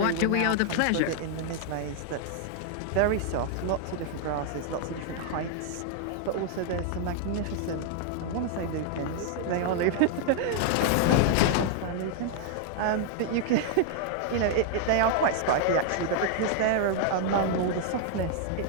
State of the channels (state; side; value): different; both; correlation 0.00